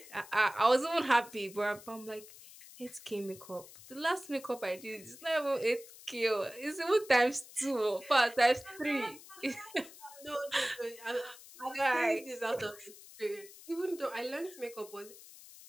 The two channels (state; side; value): noise; left; hiss, 18 dB below the sound